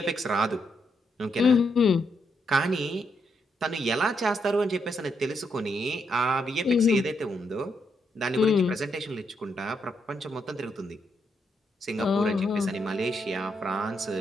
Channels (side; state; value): both; normal; correlation 0.79